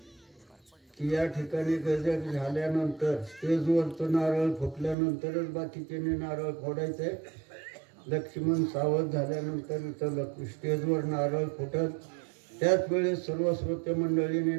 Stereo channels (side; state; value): left; drops out; at 5.0 s